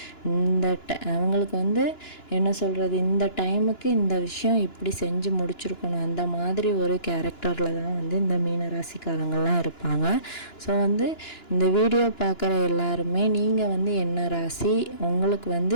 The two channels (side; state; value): right; late; 2.9 ms